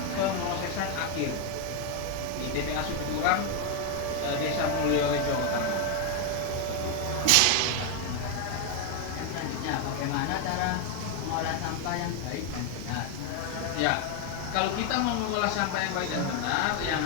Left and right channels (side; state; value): both; different; correlation 0.01